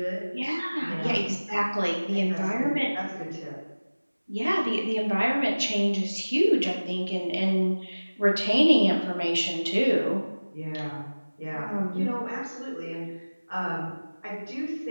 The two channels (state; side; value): inverted; both; correlation -1.00